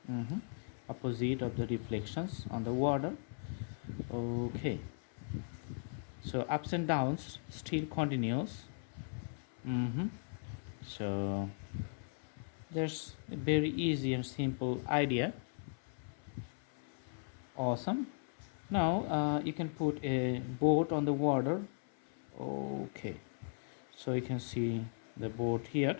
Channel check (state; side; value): silent; right; 53 dB below the other